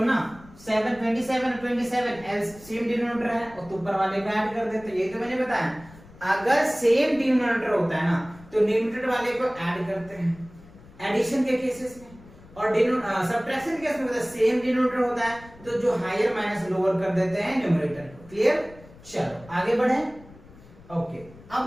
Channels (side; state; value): left; noise; rumble, 22 dB below the sound